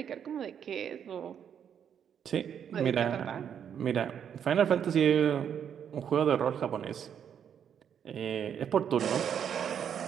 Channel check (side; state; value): left; quieter; 8.4 dB